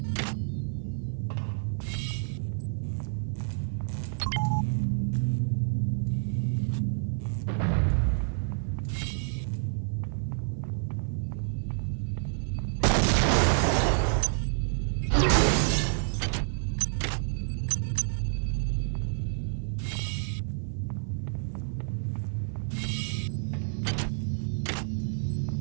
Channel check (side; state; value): left; silent; 59 dB below the other